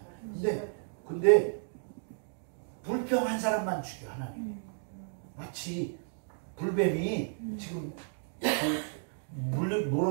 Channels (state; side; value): silent; left; digital silence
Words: 근데 불평한 사람만 죽여 하나님. 마치 불뱀이 지금 물어